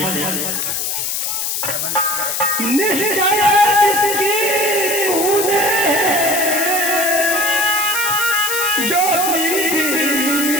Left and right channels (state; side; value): noise; left; hiss, 1 dB below the sound